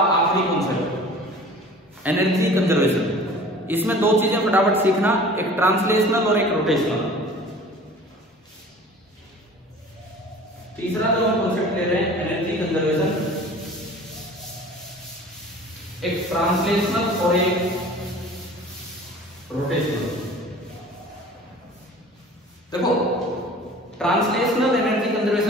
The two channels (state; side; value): normal; both; correlation 0.44